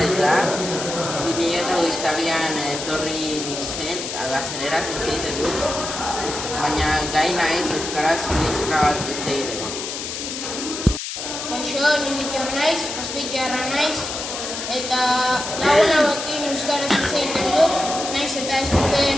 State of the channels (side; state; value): left; noise; hiss, 6 dB below the sound